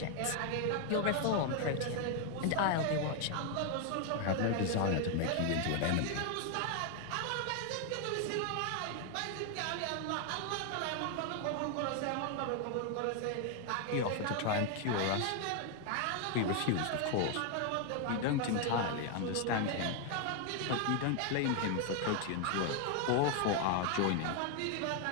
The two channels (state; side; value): different; both; correlation 0.00